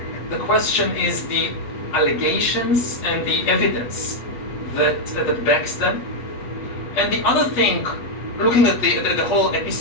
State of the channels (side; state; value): right; late; 8.4 ms